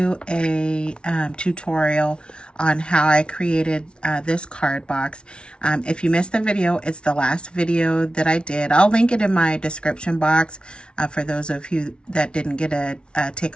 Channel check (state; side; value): late; right; 0.057 ms